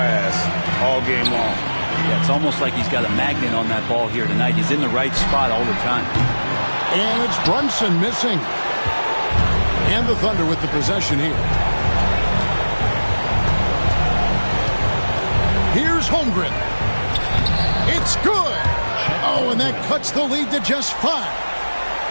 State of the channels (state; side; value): inverted; both; correlation -1.00